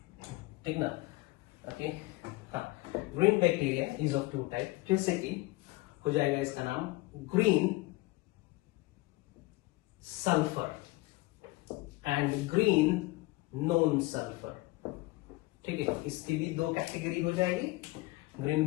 ठीक ना। ओके, हाँ, green bacteria is of two type, जैसे कि हो जाएगा इसका नाम green sulphur and green non sulphur, ठीक है। इसकी भी दो कैटेगरी हो जाएगी। ग्रीन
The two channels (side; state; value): right; quieter; 20.8 dB